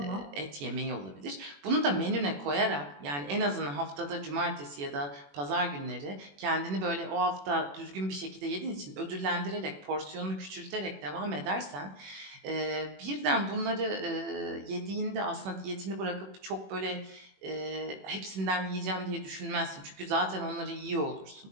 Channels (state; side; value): late; left; 21 ms